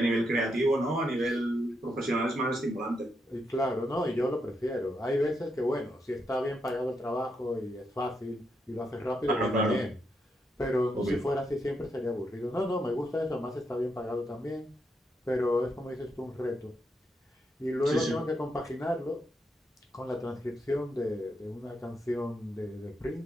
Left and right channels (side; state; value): both; normal; correlation 0.81